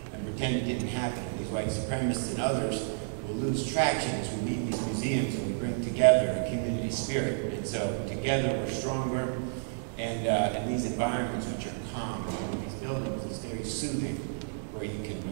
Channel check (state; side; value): silent; left; digital silence